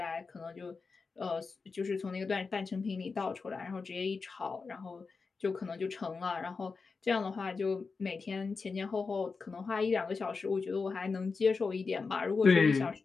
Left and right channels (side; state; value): right; quieter; 4.6 dB